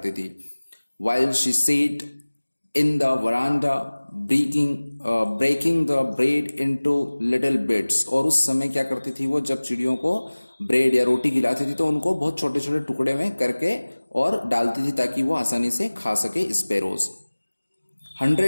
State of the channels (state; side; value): inverted; both; correlation -1.00